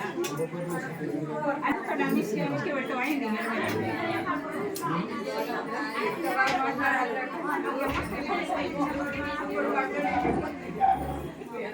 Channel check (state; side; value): identical; both; correlation 1.00